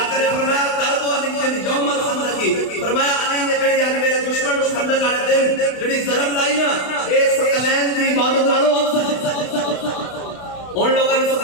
نے فرمایا ضرب علی یوم الخندق. فرمایا علی نے جڑی یعنی میرے دشمن کو خندق والے دن جڑی ضرب لائی نا اے ثقلین دی عبادت نالوں افضل ہے. ان لوگوں نے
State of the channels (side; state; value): right; late; 32 ms